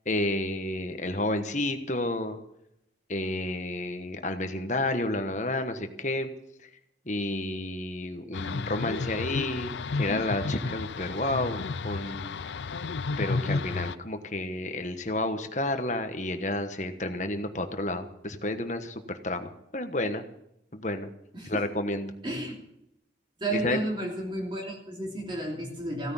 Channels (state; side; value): normal; both; correlation 0.37